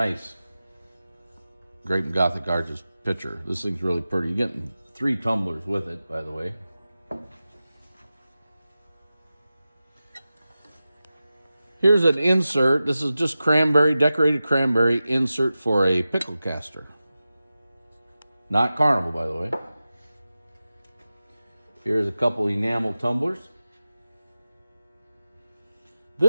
Grape and Gothic Arches pitcher. This thing's really pretty. You're getting 3 tumblers with it, by the way. Here's an insert. This is just cranberry, decorated cranberry insert for a pickle caster. Not Carnival, by the way. Here's a couple enamel tumblers.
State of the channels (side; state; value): both; inverted; correlation -0.94